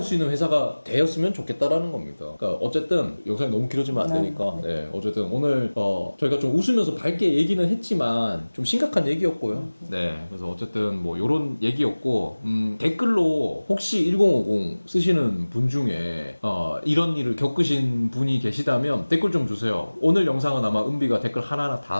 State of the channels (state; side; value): inverted; both; correlation -1.00